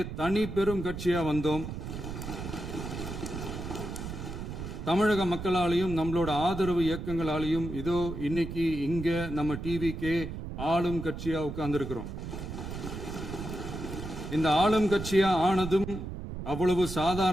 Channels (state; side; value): noise; right; rumble, 7 dB below the sound